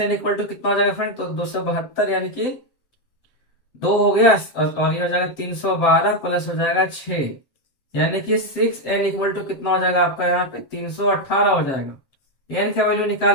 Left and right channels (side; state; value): right; late; 7.7 ms